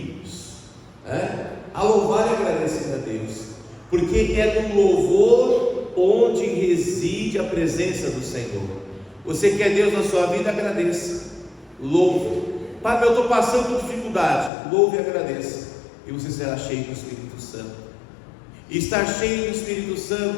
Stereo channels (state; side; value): drops out; right; at 14.5 s